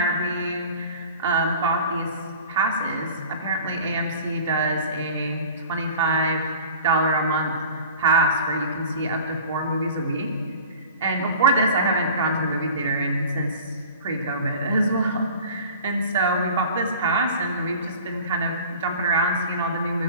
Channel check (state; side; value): inverted; both; correlation -0.41